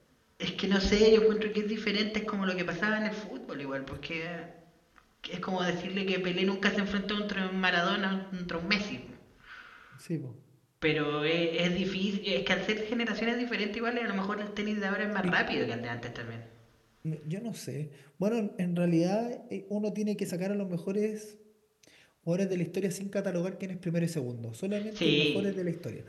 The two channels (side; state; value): both; identical; correlation 1.00